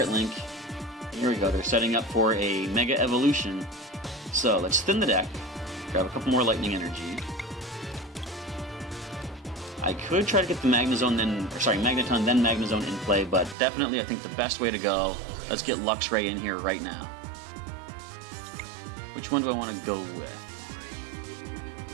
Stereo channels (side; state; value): left; drops out; at 13.6 s